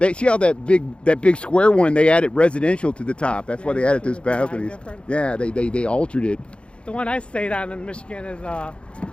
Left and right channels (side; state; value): right; late; 0.057 ms